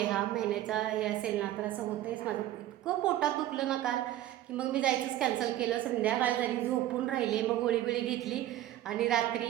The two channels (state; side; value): quieter; left; 13.7 dB